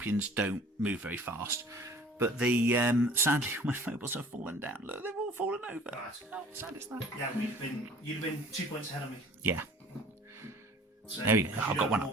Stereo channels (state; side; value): normal; both; correlation 0.49